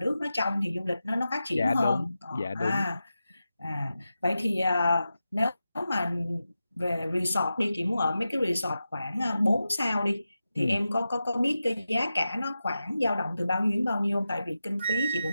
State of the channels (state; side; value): inverted; both; correlation -0.91